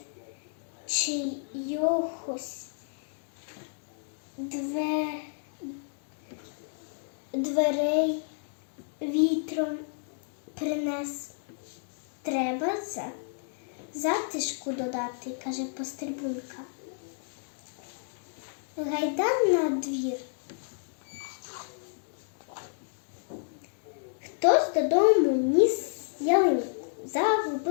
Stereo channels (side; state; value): right; silent; digital silence